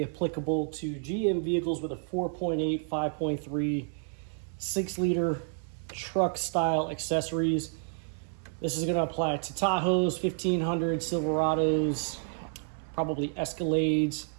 applicable to GM vehicles with a 4.8, 5.3, 6-liter truck style accessories. This is going to apply to Tahoes, 1500, Silverados, probably Escalades,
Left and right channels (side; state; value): left; silent; 58 dB below the other